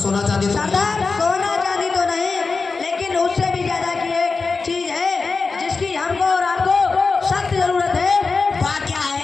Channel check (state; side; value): quieter; right; 4.3 dB